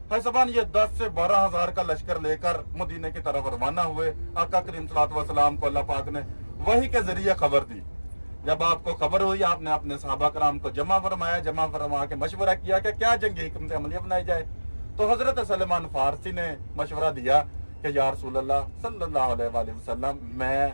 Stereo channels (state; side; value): inverted; both; correlation -1.00